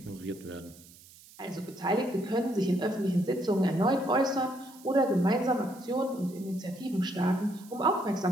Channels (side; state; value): right; noise; hiss, 22 dB below the sound